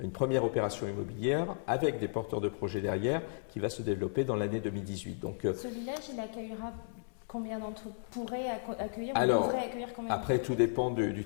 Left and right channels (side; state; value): right; silent; 55 dB below the other